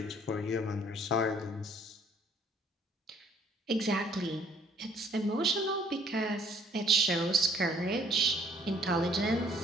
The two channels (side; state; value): both; normal; correlation 0.60